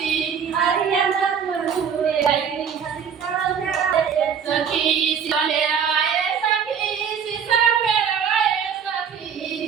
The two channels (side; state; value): left; quieter; 7.2 dB